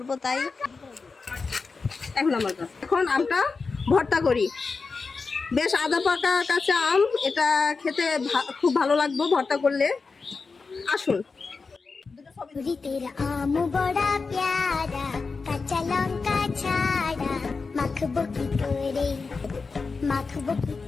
তাই। এখন আমটা ভর্তা করি। বেশ আদা পাকা কাঁচা আম, এটা খেতে খুব ভালো লাগবে ভর্তা করলে। আসুন। তেরা আম বড়া প্যারা, কাঁচা লঙ্কা ছাড়া, মাখবো কি করে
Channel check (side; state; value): right; quieter; 4.5 dB